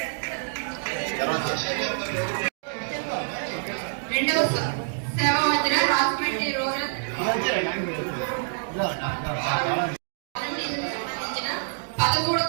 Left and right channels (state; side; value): silent; left; digital silence